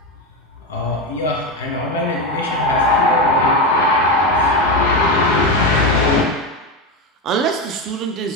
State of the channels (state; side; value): normal; both; correlation 0.14